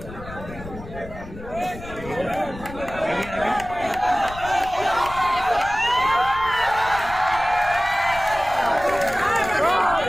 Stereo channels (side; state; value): left; noise; rumble, 14 dB below the sound